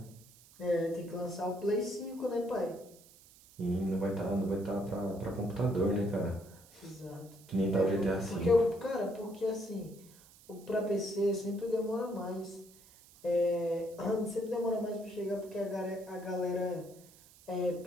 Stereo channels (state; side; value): noise; right; hiss, 24 dB below the sound